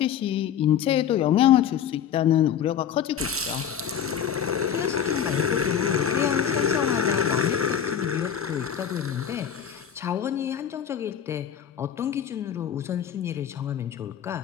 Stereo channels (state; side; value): quieter; right; 8.8 dB